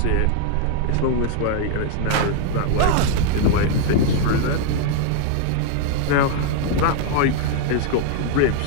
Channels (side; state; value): both; different; correlation 0.00